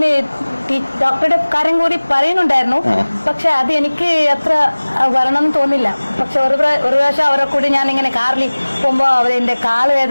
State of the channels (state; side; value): inverted; both; correlation -1.00